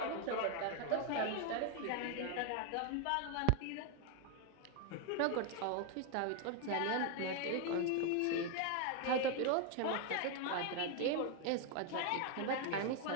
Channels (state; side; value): different; both; correlation 0.01